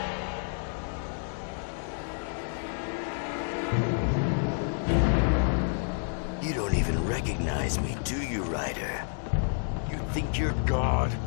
You don't even recognize me, do you, Ryder? You think you're God?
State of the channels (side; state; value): right; silent; 58 dB below the other